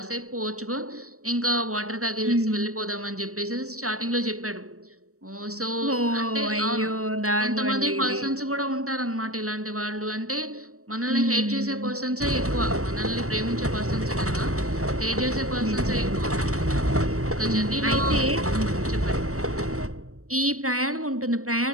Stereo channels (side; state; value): left; late; 0.65 ms